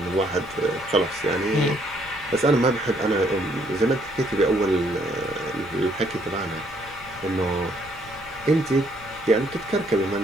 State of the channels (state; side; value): noise; left; rumble, 22 dB below the sound